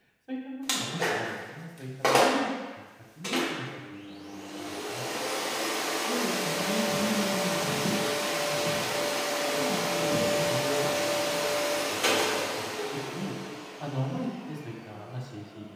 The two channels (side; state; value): both; identical; correlation 1.00